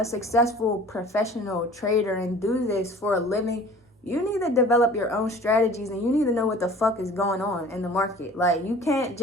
successful professional trader and do this for a living, you need to develop your own strategies and you need to know what the fuck is going on in the market. Like you can't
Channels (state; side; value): normal; both; correlation 0.46